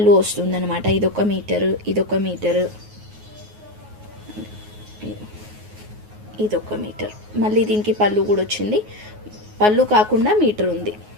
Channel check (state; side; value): late; left; 9.5 ms